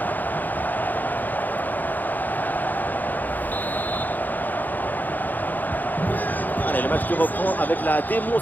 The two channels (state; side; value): late; right; 0.085 ms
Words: Allez, le match qui reprend avec la